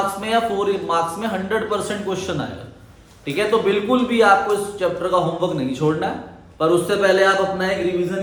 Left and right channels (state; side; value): identical; both; correlation 1.00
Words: में या 4 मार्क्स में 100% क्वेश्चन आएगा, ठीक है। तो बिल्कुल भी आपको इस चैप्टर का होमवर्क नहीं छोड़ना है, पर उससे पहले आप अपना एक